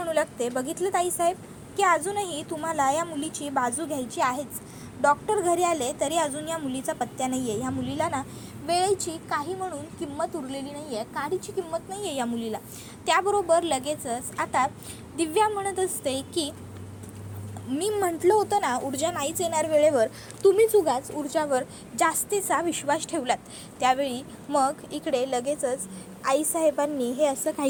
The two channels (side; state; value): both; identical; correlation 1.00